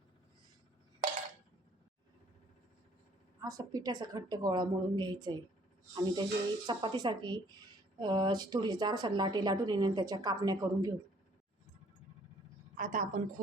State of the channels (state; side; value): normal; both; correlation 0.60